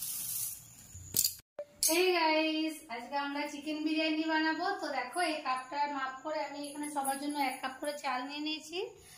Hey guys, আজকে আমরা চিকেন বিরিয়ানি বানাবো। তো দেখো এই কাপটার মাপ করে আমি এখানে সবার জন্য 1 কাপ করে চাল নিয়ে নিয়েছি।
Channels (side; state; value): both; identical; correlation 1.00